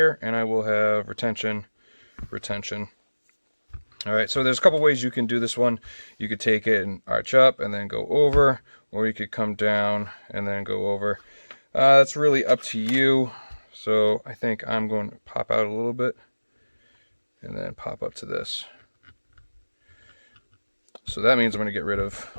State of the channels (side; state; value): both; inverted; correlation -1.00